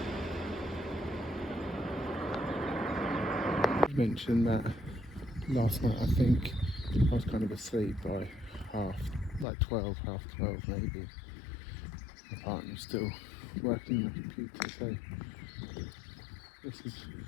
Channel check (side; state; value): right; drops out; at 9.5 s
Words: I mentioned that last night I think I was kind of asleep by like 12, half 12 maybe. My partner's still working on the computer, so this is